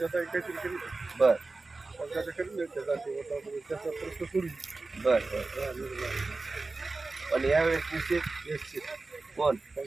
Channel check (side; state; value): left; quieter; 3.6 dB